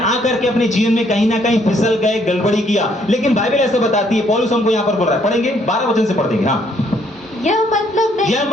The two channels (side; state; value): both; normal; correlation 0.67